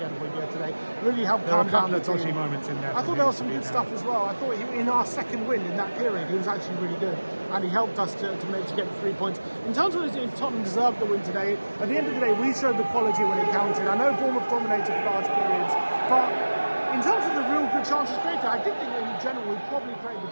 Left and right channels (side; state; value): both; inverted; correlation -1.00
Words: today. Really helped There were calm a couple down of the dodgy team. moments in there. I thought there was some good stuff as well. I thought in our second win in that period, he was actually really good, and he helped us to get the 3 points. In terms of if Tottenham deserved the win today, at the end of the day, we showed the quality when it counted. I know Bournemouth dominated for large periods, but in terms of the real good chances created, I did think in general we probably created the